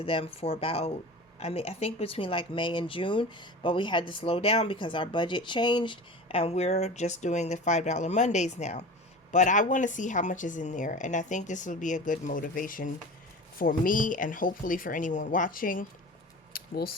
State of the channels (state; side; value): normal; both; correlation 0.34